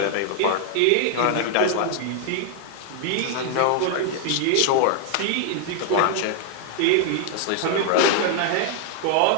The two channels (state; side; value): different; both; correlation 0.00